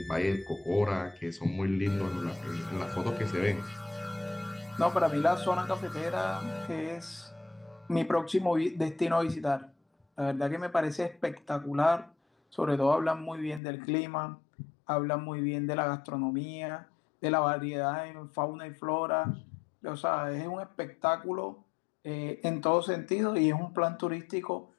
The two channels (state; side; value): drops out; right; at 13.6 s